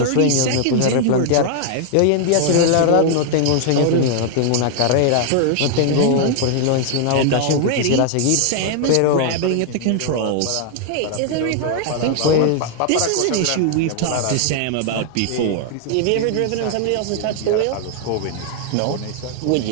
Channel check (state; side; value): different; both; correlation 0.00